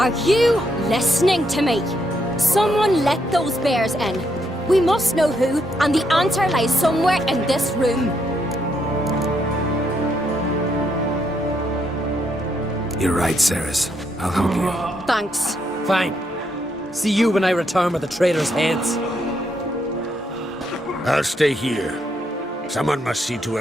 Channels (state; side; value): normal; both; correlation 0.76